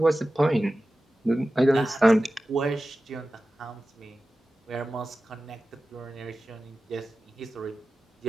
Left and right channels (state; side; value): normal; both; correlation 0.95